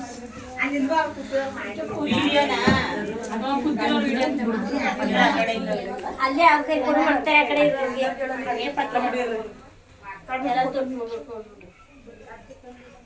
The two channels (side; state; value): both; identical; correlation 1.00